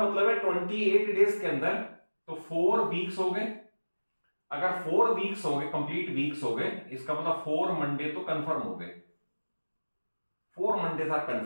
मतलब है 28 डेज के अंदर तो 4 वीक्स हो गए। अगर 4 वीक्स हो गए, कंप्लीट वीक्स हो गए, इसका मतलब 4 मंडे तो कंफर्म हो गए, 4 मंडेज आर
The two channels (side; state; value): both; inverted; correlation -1.00